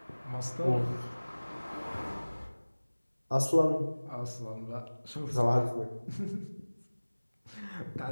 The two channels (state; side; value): inverted; both; correlation -1.00